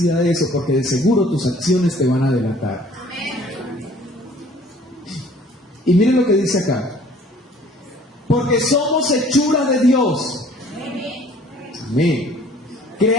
de eso, porque de seguro tus acciones te van a delatar. Y miren lo que dice acá. Porque somos hechura de Dios. Amén.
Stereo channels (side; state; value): both; normal; correlation 0.54